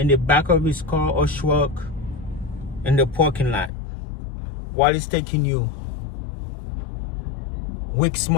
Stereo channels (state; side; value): drops out; right; at 3.7 s